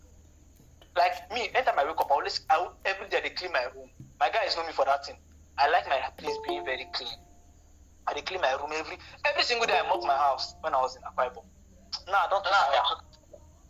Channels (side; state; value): both; identical; correlation 1.00